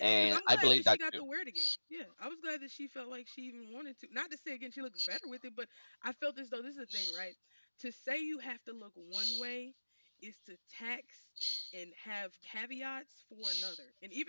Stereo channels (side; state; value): both; inverted; correlation -1.00